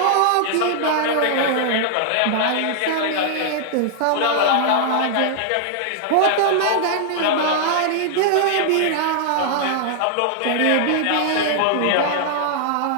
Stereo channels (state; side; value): different; both; correlation 0.00